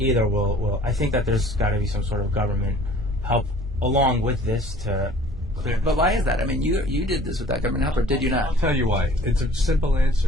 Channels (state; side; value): normal; both; correlation 0.51